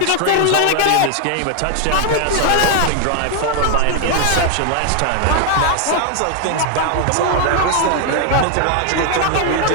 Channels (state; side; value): different; both; correlation 0.01